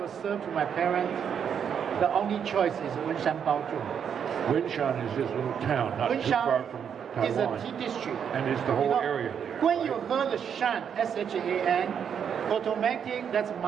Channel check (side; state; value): left; quieter; 7.8 dB